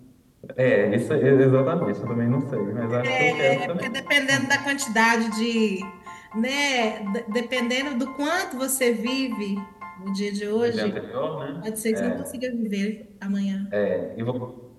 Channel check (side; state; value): both; identical; correlation 1.00